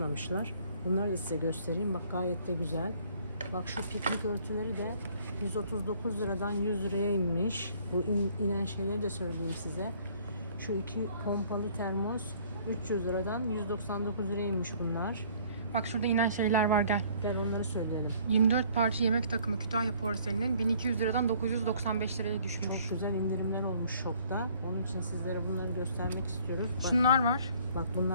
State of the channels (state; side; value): inverted; both; correlation -0.58